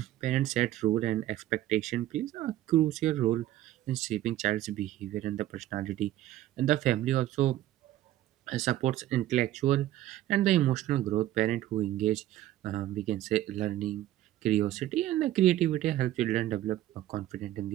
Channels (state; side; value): quieter; left; 14.0 dB